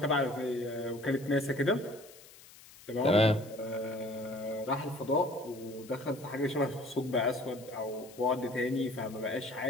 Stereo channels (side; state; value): left; noise; hiss, 21 dB below the sound